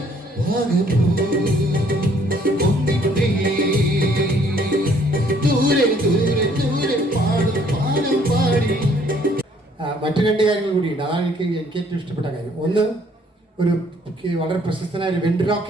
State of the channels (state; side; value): normal; both; correlation 0.63